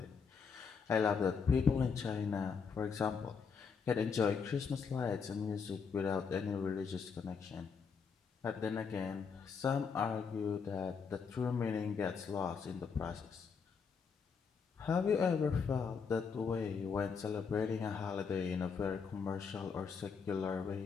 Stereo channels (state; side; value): quieter; right; 5.8 dB